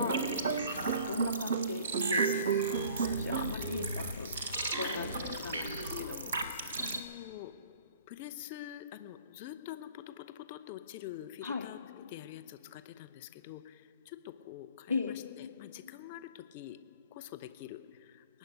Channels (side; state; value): both; inverted; correlation -0.50